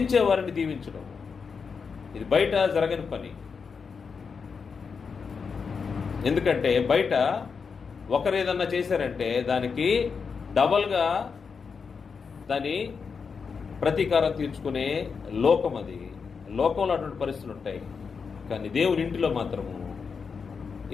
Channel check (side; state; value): right; quieter; 5.6 dB